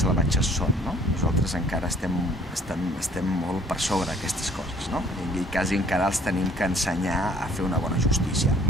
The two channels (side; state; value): both; normal; correlation 0.57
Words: són, no? Nosaltres encara estem molt per sobre d'aquestes coses, no? I quasi encara els tenim que ensenyar a fer una bona justícia.